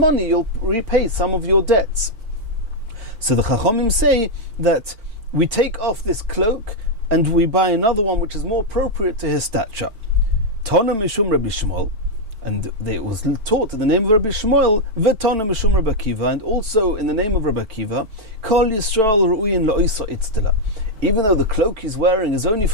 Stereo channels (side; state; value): left; late; 4.5 ms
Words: you'll repay some of your debts. So the Chachamim say that we take off this cloak and we buy another one which is more appropriate to his stature. Tana mishum Rabbi Shmuel, and it was taught in the name of Rabbi Shmuel, v'tana mishum Rabbi Akiva, and also in the name of Rabbi Akiva, Kol Yisrael ru'uyin la'oisa itztila. Even though the cloak he's wearing is only